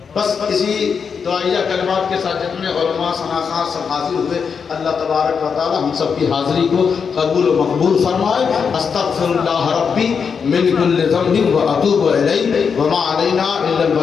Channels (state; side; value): quieter; right; 6.2 dB